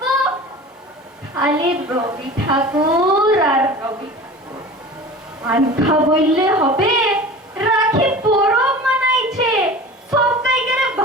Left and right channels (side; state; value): both; normal; correlation 0.37